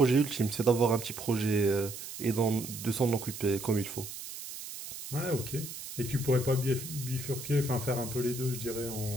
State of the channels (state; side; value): noise; right; hiss, 10 dB below the sound